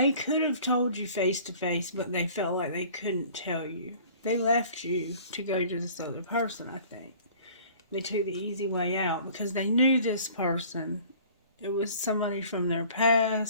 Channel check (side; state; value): both; inverted; correlation -0.49